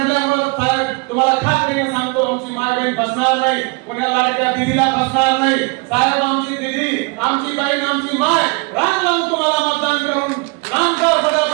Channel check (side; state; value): left; quieter; 28.6 dB